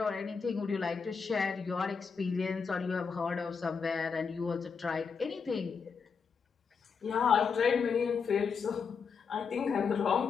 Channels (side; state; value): right; quieter; 5.7 dB